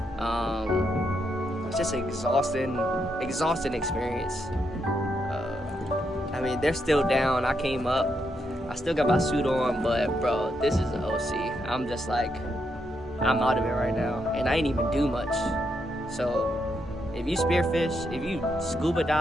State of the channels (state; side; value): normal; both; correlation 0.80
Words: It's just an exhausting experience. I mean, they're still down. I came up, I still got my suit on, but bro, this is an OC. I'm just like, I'm out of it right now, and I ain't even do much. So if you spearfish, if you scuba